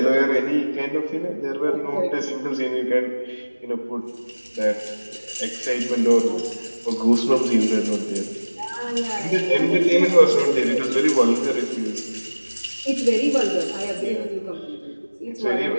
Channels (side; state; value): both; inverted; correlation -1.00